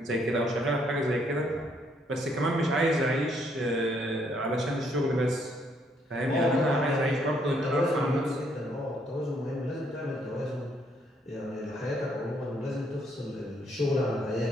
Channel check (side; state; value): both; normal; correlation 0.70